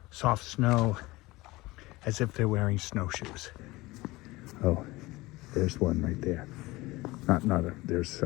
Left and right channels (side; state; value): right; quieter; 20.6 dB